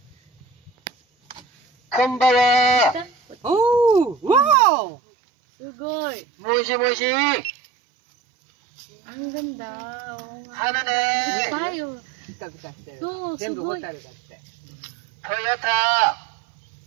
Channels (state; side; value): drops out; left; at 4.5 s